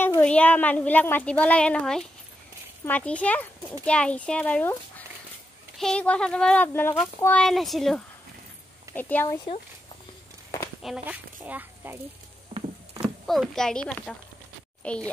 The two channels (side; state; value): both; normal; correlation 0.85